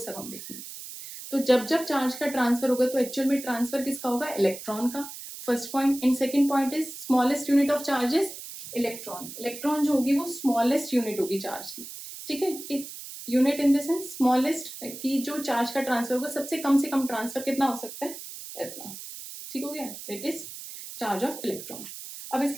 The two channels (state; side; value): noise; right; hiss, 11 dB below the sound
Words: हम देखेंगे. तो जब जब चार्ज का ट्रांसफर होगा तो एक्चुअल में ट्रांसफर किसका होगा, इलेक्ट्रॉन का. First point. And second point is smallest unit of charges electron. Electron जो होगी वो स्मॉलेस्ट यूनिट होगी चार्ज की. ठीक है. Unit in the sense smallest, की जो चार्ज का ट्रांसफर होगा सबसे कम से कम ट्रांसफर कितना हो सकता है, इतना. ठीक हो गया. That is charge of electron. अब